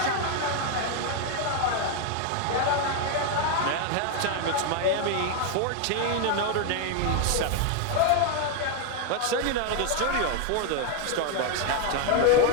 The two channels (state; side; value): different; both; correlation 0.01